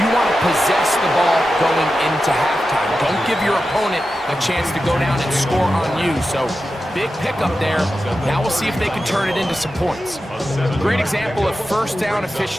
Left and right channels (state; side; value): normal; both; correlation 0.91